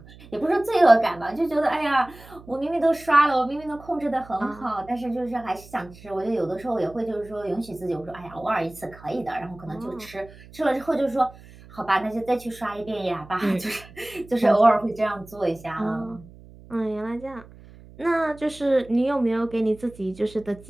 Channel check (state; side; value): noise; right; hum, 21 dB below the sound